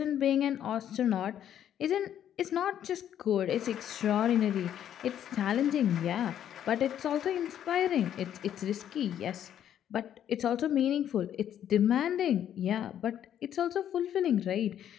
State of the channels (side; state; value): right; quieter; 10.3 dB